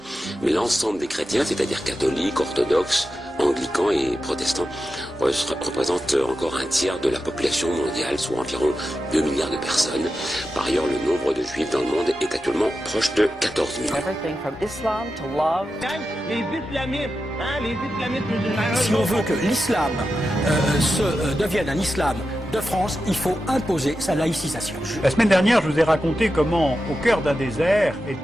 mais l'ensemble des chrétiens, c'est-à-dire catholiques, orthodoxes, anglicans et protestants, représentent encore un tiers de la population mondiale, soit environ 2 milliards de personnes. Par ailleurs, le nombre de juifs dans le monde est actuellement proche de 14 millions. Si on veut que l'islam devienne un islam de France, il faut imposer sa laïcisation. La semaine dernière, je vous ai raconté comment, au cœur d'un désert,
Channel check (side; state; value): both; normal; correlation 0.90